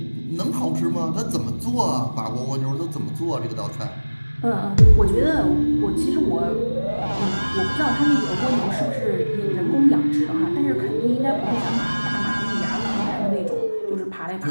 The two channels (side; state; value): both; inverted; correlation -1.00